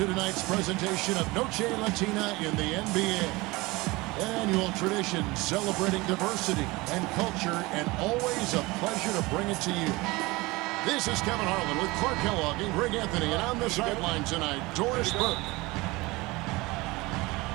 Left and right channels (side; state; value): left; quieter; 22.4 dB